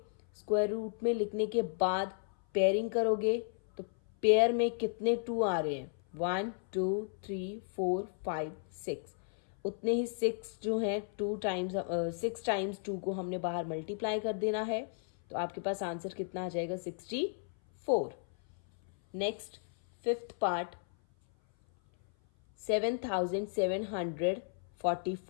स्क्वायर रूट में लिखने के बाद पेयरिंग करोगे तो पेयर में कितने 2 आ रहे हैं, 1 2 3 4 5 6। उतने ही 6 जो हैं 6 टाइम्स 2 को हमने बाहर मल्टीप्लाई कर देना है। तो आपके पास आंसर कितना आ जाएगा, 64। Next fifth part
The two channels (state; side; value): silent; right; 55 dB below the other